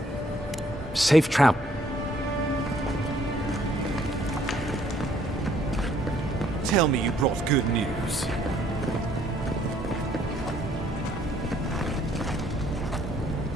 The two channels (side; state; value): both; normal; correlation 0.64